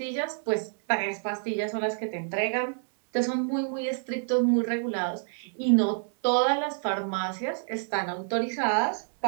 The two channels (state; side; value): silent; left; 59 dB below the other